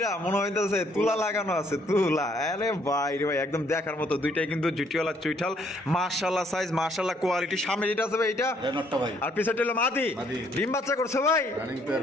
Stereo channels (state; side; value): normal; both; correlation 0.67